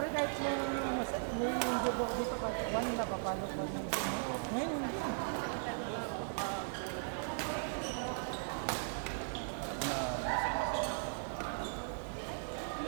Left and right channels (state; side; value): silent; left; digital silence